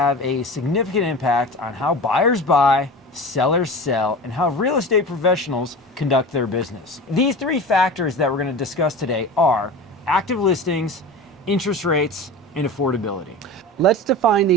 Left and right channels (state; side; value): normal; both; correlation 0.32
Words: a significant impact on how buyers buy, sellers sell, and how real estate professionals conduct their business. These three factors that we're going to discuss today are active listings, interest rates, and affordability. Let's define